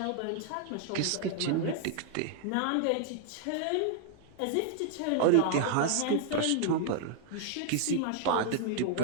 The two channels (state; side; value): different; both; correlation 0.00